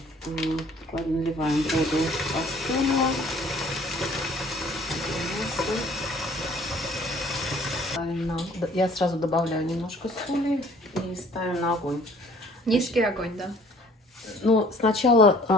Наливаем воду кастрюлю. Я сразу добавляю немножко соли и ставим на огонь. Низкий огонь, да? Ну,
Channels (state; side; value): normal; both; correlation 0.56